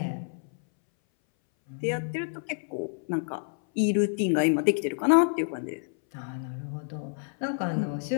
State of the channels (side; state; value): right; silent; 59 dB below the other